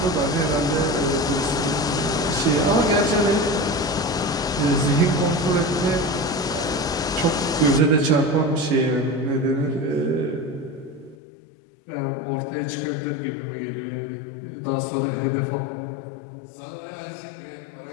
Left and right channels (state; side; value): drops out; right; at 11.2 s